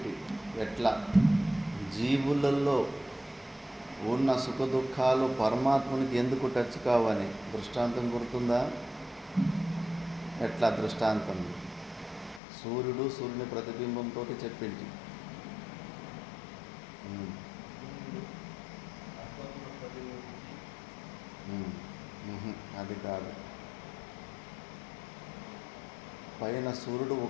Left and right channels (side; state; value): right; drops out; at 12.4 s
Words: ఎట్లా జీవులలో ఉన్న సుఖ దుఃఖాలు పరమాత్మునికి ఎందుకు టచ్ కావని దృష్టాంతం గుర్తుందా? ఎట్లా దృష్టాంతం? సూర్యుని ప్రతిబింబంతో చెప్పింది. అది కాదు. పైన సూర్యుడు